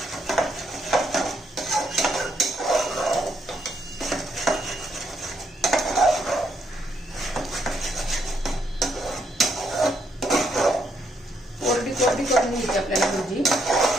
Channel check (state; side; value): normal; both; correlation 0.75